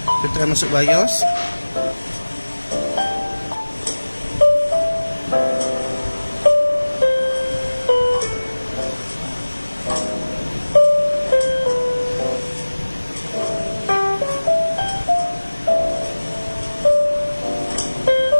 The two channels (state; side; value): inverted; both; correlation -1.00